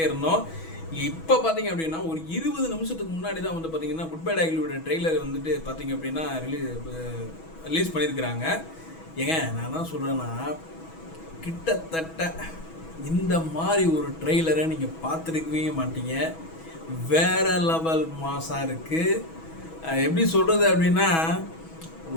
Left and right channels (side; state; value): right; late; 6.2 ms